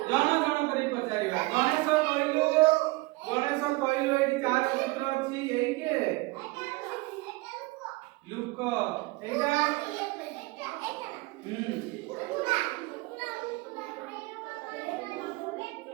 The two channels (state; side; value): quieter; left; 23.3 dB